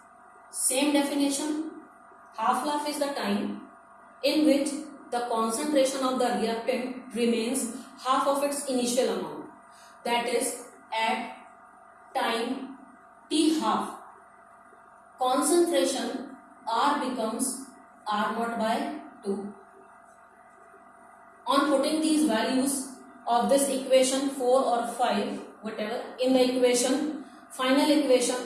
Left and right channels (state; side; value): identical; both; correlation 1.00